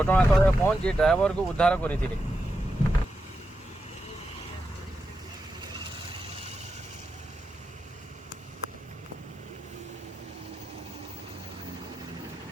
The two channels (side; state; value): both; normal; correlation 0.88